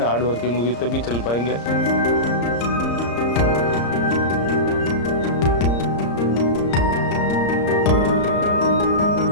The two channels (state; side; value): late; right; 34 ms